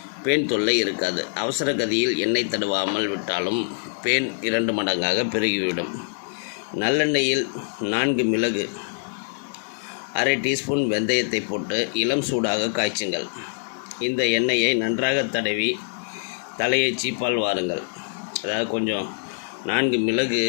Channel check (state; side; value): silent; right; digital silence